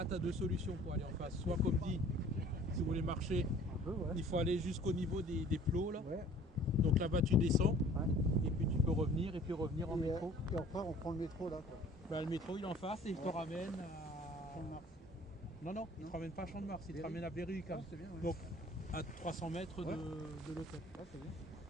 tu as deux solutions pour aller en face. Soit comme dit, si vous voulez marcher, il faut aller jusqu'au niveau des plots là. Ouais. Donc là-bas tu descends, Ouais. et puis tu peux revenir et puis revenir en métro. Et après, on prend le métro là, quoi. Ben, le métro il est en face et il te ramène à Champ-de-Mars. Non, il te ramène pas à Champ-de-Mars, il te ramène à Berry quand même. C'est bien, ouais. Donc à 300 mètres Ouais. de l'hôtel. Ouais, c'est bien.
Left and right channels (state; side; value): normal; both; correlation 0.51